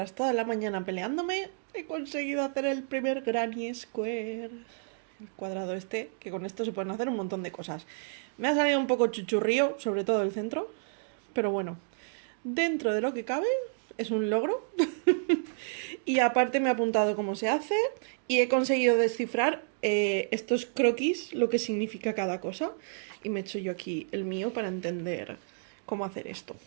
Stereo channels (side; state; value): left; silent; digital silence